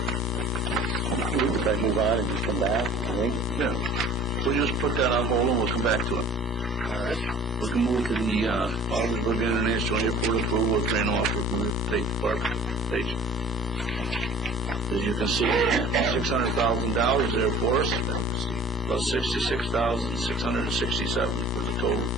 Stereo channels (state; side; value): normal; both; correlation 0.47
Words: If I move on and just come back, I think. Yeah. We'll just put that on hold and we'll come back to it. All right. We can move to the Ogdensburg International Airport approval of train offer from the State Department of Transportation. As you can see, $600,000 there for us, plus $66,667 for the total